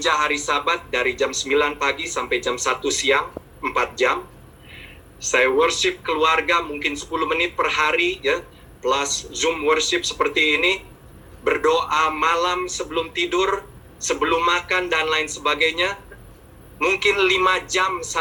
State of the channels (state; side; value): identical; both; correlation 1.00